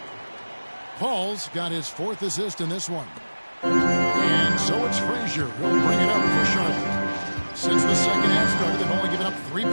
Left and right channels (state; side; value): inverted; both; correlation -1.00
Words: Paul's got his 4th assist in this one. And so it's Frazier who'll bring it up for Charlotte. Since the second half started, they've only given up 3